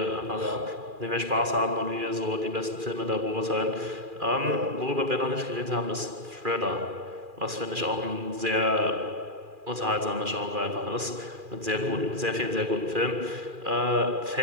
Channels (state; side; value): late; left; 2.4 ms